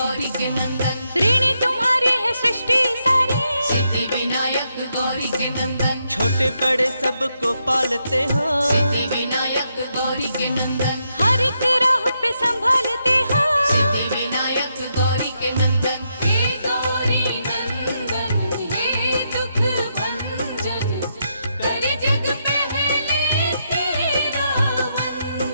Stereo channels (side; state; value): both; inverted; correlation -0.81